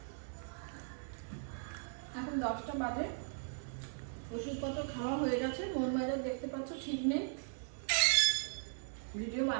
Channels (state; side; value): silent; left; 52 dB below the other